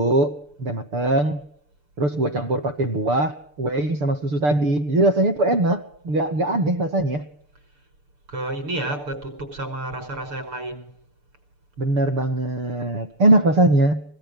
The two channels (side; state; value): left; late; 6.8 ms